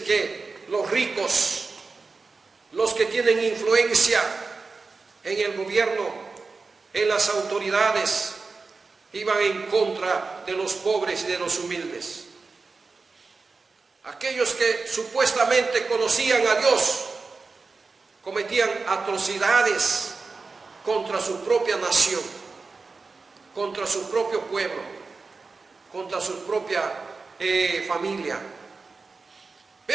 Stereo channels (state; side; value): quieter; left; 4.2 dB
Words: que los ricos, los que tienen influencia en el gobierno, en las autoridades, iban en contra de los pobres y de los humildes. Aquellos que supuestamente conocían a Dios cometían atrocidades contra su propia nación, contra su propio pueblo, contra su propia familia.